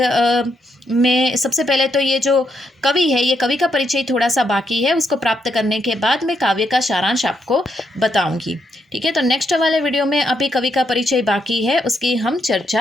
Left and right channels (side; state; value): both; normal; correlation 0.79